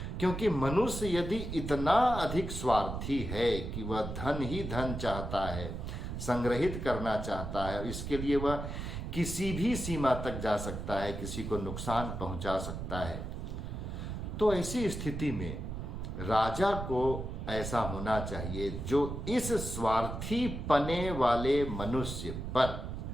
क्योंकि मनुष्य यदि इतना अधिक स्वार्थी है कि वह धन ही धन चाहता है, संग्रहित करना चाहता है, इसके लिए वह किसी भी सीमा तक जा सकता है, किसी को नुकसान पहुंचा सकता है, तो ऐसी स्थिति में राजा को ऐसा होना चाहिए जो इस स्वार्थी पने वाले मनुष्य पर,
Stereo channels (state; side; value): noise; right; rumble, 6 dB below the sound